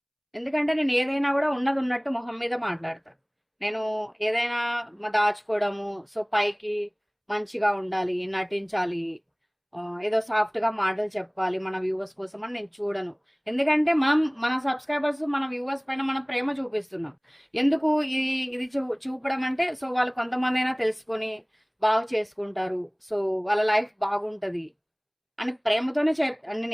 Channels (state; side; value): identical; both; correlation 1.00